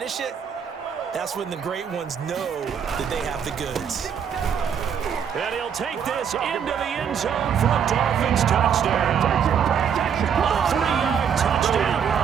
it, that's when the great ones know that they have the goods. And he'll take this into the end zone for a Dolphins touchdown. A 3-yard touchdown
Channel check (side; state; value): left; quieter; 7.7 dB